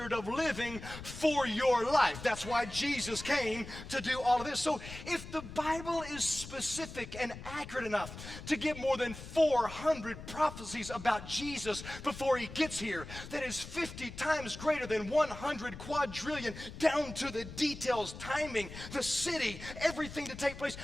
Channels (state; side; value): noise; left; rumble, 12 dB below the sound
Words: of living for your life. That's why Jesus came to do all of this. So if the Bible is specific and accurate enough to give more than 400 prophecies about Jesus before he gets here, that is 50 times greater than 100 quadrillion, down to the details, timing, the city, everything to take place,